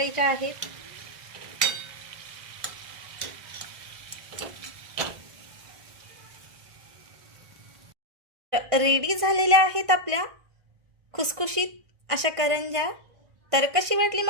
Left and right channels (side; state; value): left; late; 1.5 ms